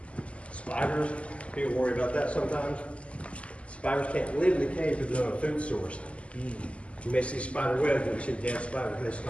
Spiders, people worry about that sometimes. Spiders can't live in the cave if there's no food source. You may see spider webs, but you see dead spiders, they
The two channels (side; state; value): right; late; 0.059 ms